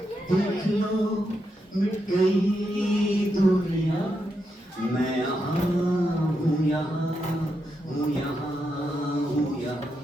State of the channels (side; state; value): both; normal; correlation 0.84